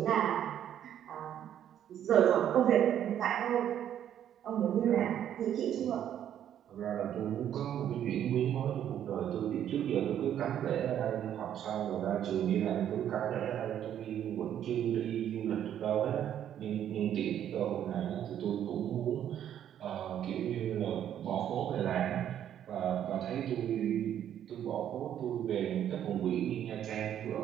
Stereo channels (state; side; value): quieter; left; 10.3 dB